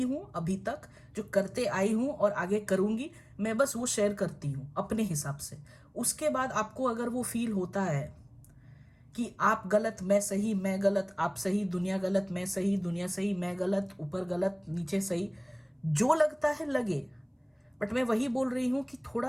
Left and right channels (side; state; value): both; identical; correlation 1.00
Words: हूं अभी तक, जो करते आई हूं और आगे करूंगी, मैं बस वो शेयर करती हूं अपने हिसाब से। उसके बाद आपको अगर वो फील होता है कि आप गलत मैं सही, मैं गलत आप सही, दुनिया गलत मैं सही, दुनिया सही मैं गलत, ऊपर गलत नीचे सही, जो लगता है लगे। बट मैं वही बोल रही हूं कि